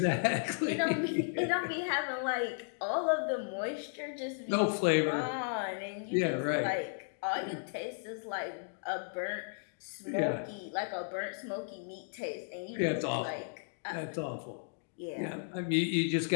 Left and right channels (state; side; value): silent; right; digital silence